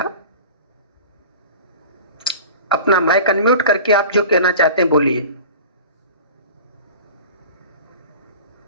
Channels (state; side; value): inverted; both; correlation -0.38